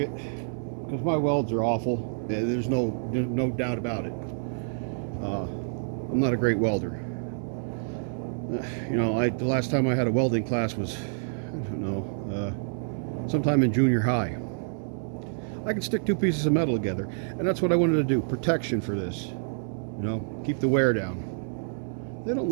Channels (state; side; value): silent; left; digital silence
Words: Because my welds are awful. There's no doubt about it. I'm not a great welder. You know, the last time I had a welding class was, I don't know, sometime in junior high. I can stick two pieces of metal together, and that's what I wanted to do. Protection for this, you know, keep the wear down. They don't